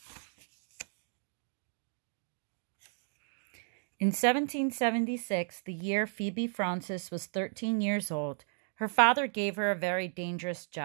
In 1776, the year Phoebe Francis was 13 years old, her father gave her a very dangerous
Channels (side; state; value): left; silent; 55 dB below the other